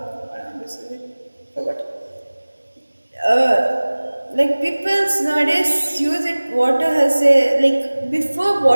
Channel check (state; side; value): inverted; both; correlation -1.00